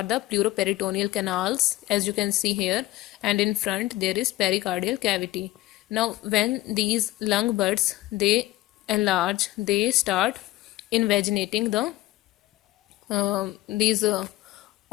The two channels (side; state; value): right; quieter; 17.0 dB